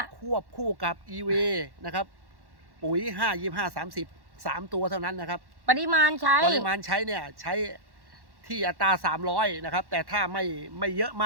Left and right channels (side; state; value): left; late; 1.1 ms